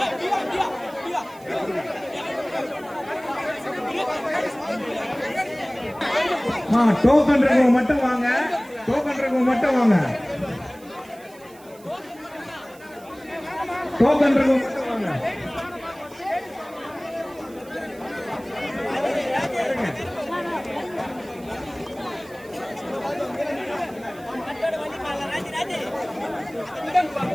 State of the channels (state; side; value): noise; right; hiss, 24 dB below the sound